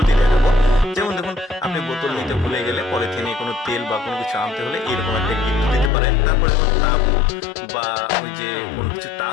দেখাবো। যেমন দেখুন, আপনি বোতল নিতে ভুলে গেলে পলিথিনে কোনো তেল বা কোনো কিছু আনতে হলে এরকম একটা গিট্টু দিতে পারেন। তারপরে তাবু বা ওই যে কোনো কিছু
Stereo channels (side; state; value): right; drops out; at 5.9 s